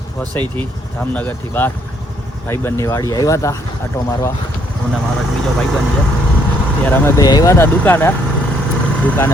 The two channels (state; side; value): normal; both; correlation 0.69